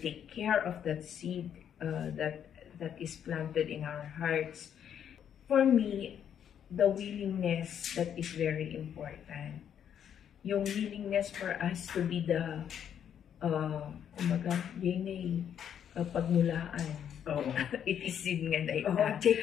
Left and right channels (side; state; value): right; quieter; 9.0 dB